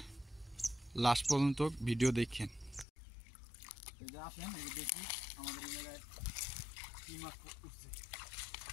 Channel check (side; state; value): right; drops out; at 2.9 s